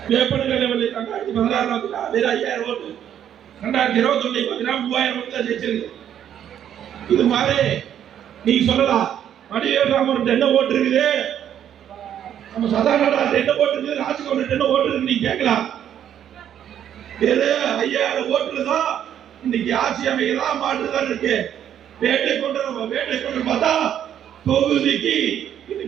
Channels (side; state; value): left; quieter; 9.9 dB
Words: வேப்பனகல் 2016 வெறும் 5,000 ஓட்டு. 2021 3,000 ஓட்டு தான் ஜெயிச்சிருக்கு. இது மாதிரி நீங்க சொல்லலாம் வடிவேல் ராமன் என்ன ஓட்டு இருக்குது, நம்ம சதானந்தன் என்ன ஓட்டு இருக்குது, ராஜ்கோட் என்ன ஓட்டு இருக்கு நீங்க கேட்கலாம். வேறு 5000 ஓட்டுல தான் இன்னைக்கு ஆட்சி அமைக்கலாம் மாற்றுதான் இருக்கு. வேட்டை கொண்டு பார்த்தா தொகுதிக்கு